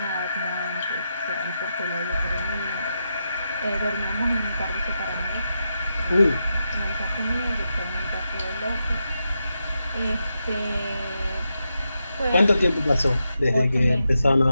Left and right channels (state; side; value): inverted; both; correlation -0.86